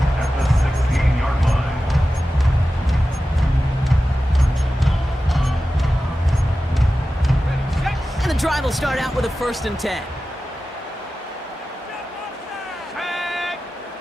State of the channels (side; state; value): both; normal; correlation 0.94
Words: And the drive will start out with a 1st and 10.